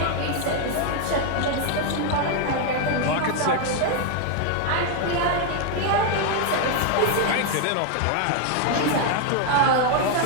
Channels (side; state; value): both; different; correlation 0.01